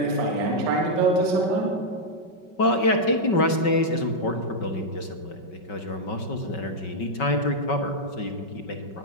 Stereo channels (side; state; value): right; late; 5.3 ms